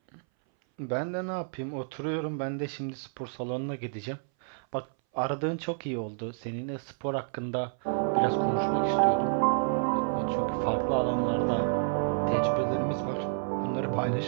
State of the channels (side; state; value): left; silent; 58 dB below the other